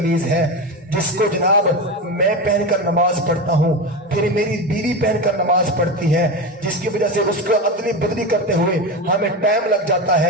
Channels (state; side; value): normal; both; correlation 0.19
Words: ہے جس کو جناب میں پہن کر نماز پڑھتا ہوں، پھر میری بیوی پہن کر نماز پڑھتی ہے، جس کی وجہ سے اس کو ادلی بدلی کرتے ہوئے ہمیں ٹائم لگ جاتا